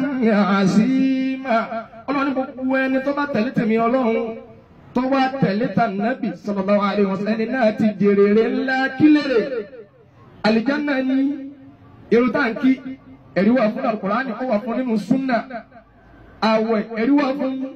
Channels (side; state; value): both; identical; correlation 1.00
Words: 'azima ọlọ́run gbogbo ẹni tó bá tẹ̀lé tèmi ọlọ́run tó wá tẹ̀lé tà Nábì sallallahu alaihi wasallam ẹni náà ti jèrèrè ńlá kílèrè àlìjánnà ní irun táǹkì ẹ̀rí wà fún Al-Qur'ani ó wà fún nínú súnà àwẹ̀ ẹ̀rí wà fún